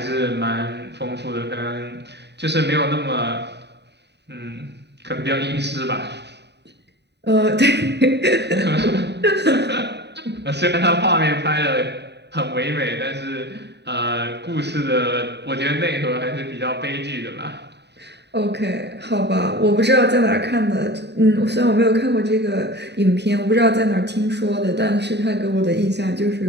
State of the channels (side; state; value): left; late; 0.50 ms